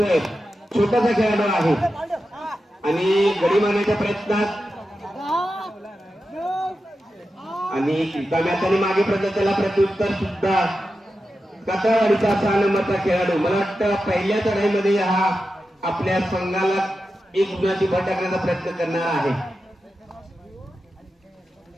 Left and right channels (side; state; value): both; normal; correlation 0.91